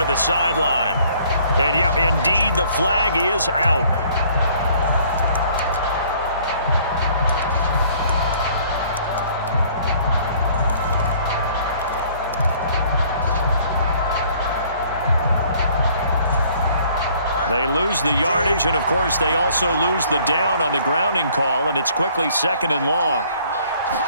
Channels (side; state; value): both; inverted; correlation -0.58